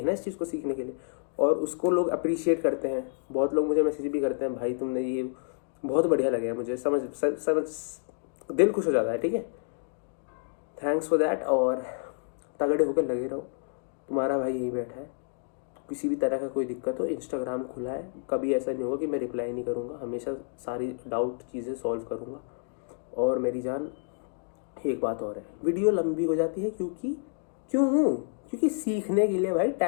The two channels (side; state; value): right; silent; digital silence